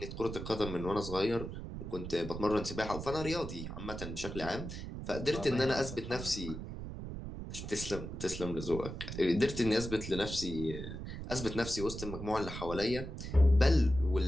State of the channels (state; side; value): noise; right; rumble, 7 dB below the sound